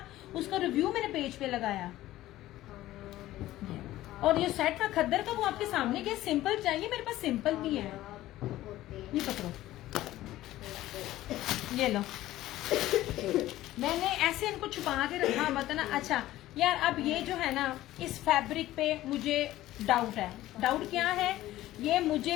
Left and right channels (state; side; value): quieter; right; 15.3 dB